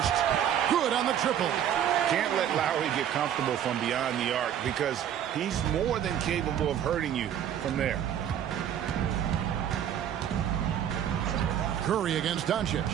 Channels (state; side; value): quieter; left; 9.9 dB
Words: Good on the triple. Can't let Lowry get comfortable from beyond the arc because he's more than capable of hurting you from there. Curry against Doncic.